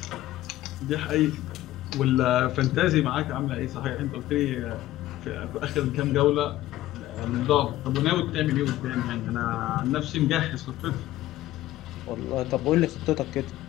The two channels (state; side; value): quieter; right; 15.2 dB